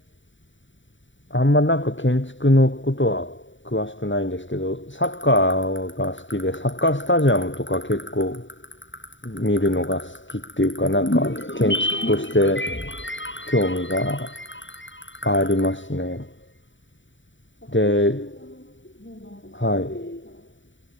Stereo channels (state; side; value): late; right; 0.55 ms